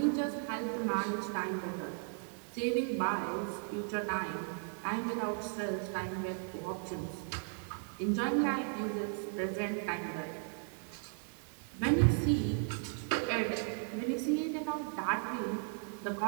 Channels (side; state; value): left; silent; 54 dB below the other